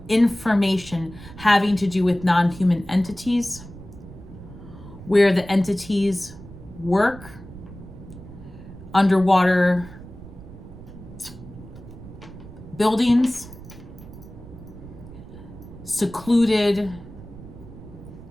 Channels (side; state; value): right; noise; rumble, 16 dB below the sound